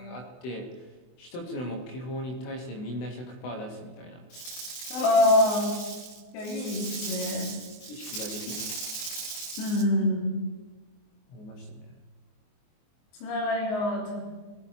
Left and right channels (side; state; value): right; late; 24 ms